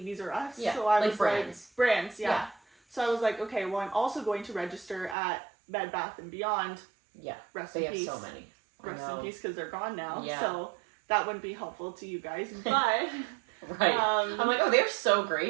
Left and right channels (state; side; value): drops out; left; at 5.2 s